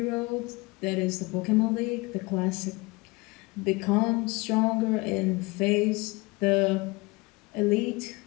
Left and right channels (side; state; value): right; quieter; 24.7 dB